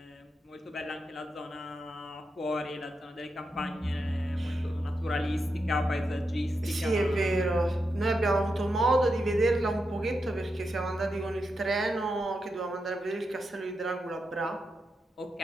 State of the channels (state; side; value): normal; both; correlation 0.86